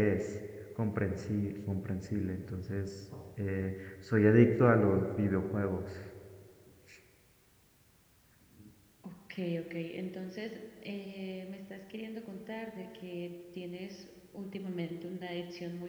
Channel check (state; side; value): identical; both; correlation 1.00